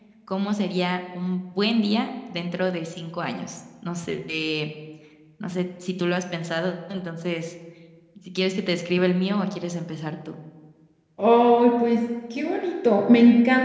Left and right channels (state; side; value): identical; both; correlation 1.00